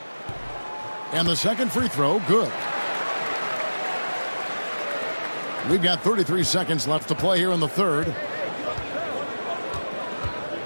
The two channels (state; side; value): inverted; both; correlation -1.00